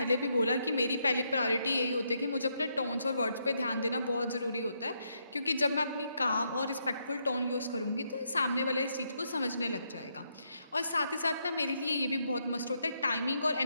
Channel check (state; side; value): inverted; both; correlation -0.78